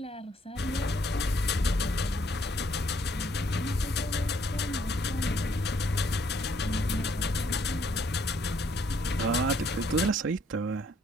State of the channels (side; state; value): both; normal; correlation 0.67